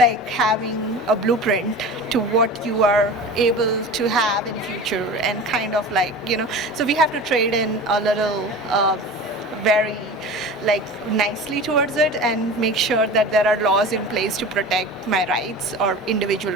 having a blueprint to what you are able to have in future, and kind of like, you know, so we have to trade in a little very like nicely towards it and make sure that there are laws in place to protect my rights or individual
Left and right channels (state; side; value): normal; both; correlation 0.34